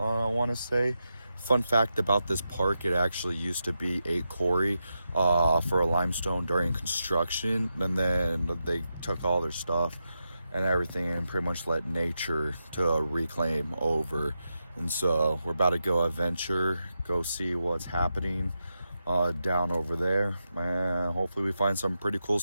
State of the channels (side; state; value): both; inverted; correlation -0.87